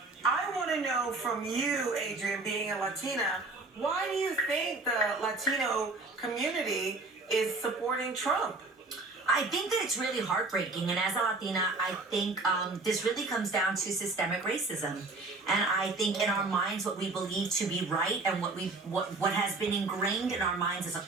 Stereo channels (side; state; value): left; quieter; 3.4 dB